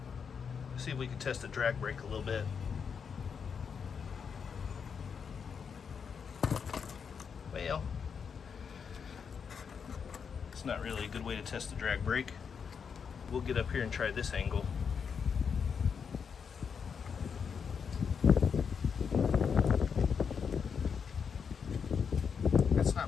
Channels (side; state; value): right; quieter; 6.4 dB